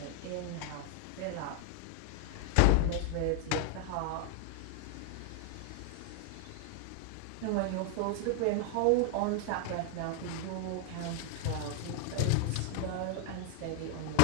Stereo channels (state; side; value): different; both; correlation 0.00